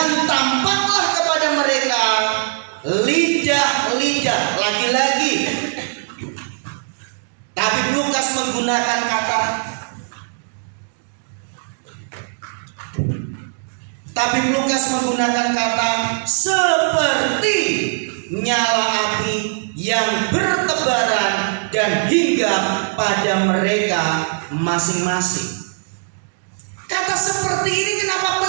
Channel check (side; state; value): left; silent; digital silence